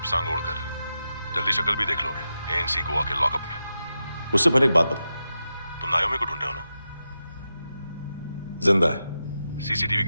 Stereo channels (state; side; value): inverted; both; correlation -0.89